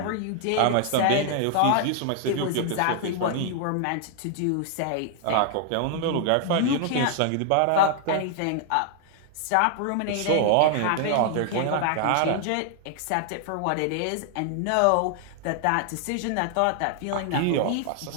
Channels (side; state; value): both; different; correlation 0.00